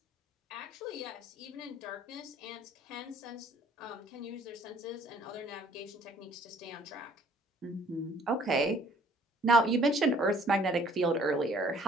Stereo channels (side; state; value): both; normal; correlation 0.58